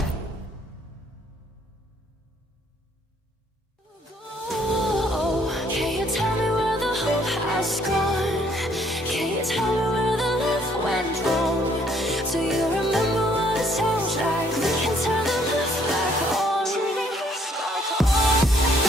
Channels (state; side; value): normal; both; correlation 0.65